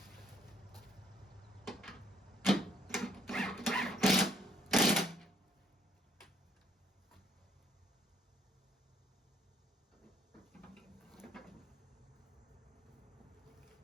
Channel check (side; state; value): both; normal; correlation 0.63